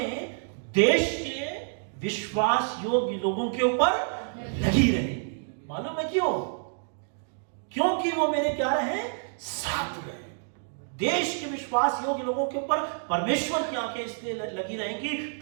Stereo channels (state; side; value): silent; left; digital silence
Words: देश के विश्वास योग्य लोगों के ऊपर लगी रहेगी। मालूम है क्यों? क्योंकि वो मेरे क्या रहे, साथ रहे। देश के विश्वास योग्य लोगों के ऊपर परमेश्वर की आंखें इसलिए लगी रहेंगी